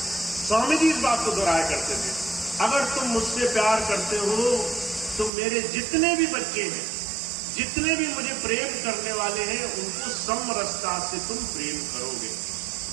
स्वामी जी इस बात को दोहराया करते थे, अगर तुम मुझसे प्यार करते हो तो मेरे जितने भी बच्चे हैं, जितने भी मुझे प्रेम करने वाले हैं, उनको समरसता से तुम प्रेम करोगे।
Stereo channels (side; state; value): left; drops out; at 5.3 s